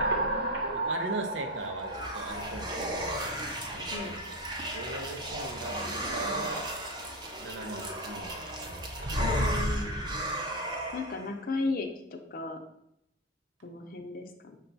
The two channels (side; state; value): both; normal; correlation 0.12